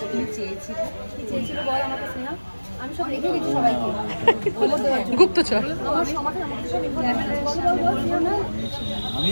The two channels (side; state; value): both; inverted; correlation -1.00